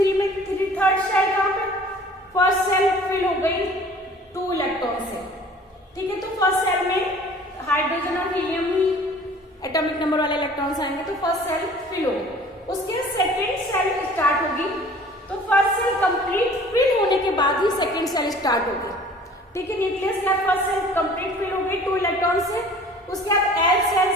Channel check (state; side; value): normal; both; correlation 0.48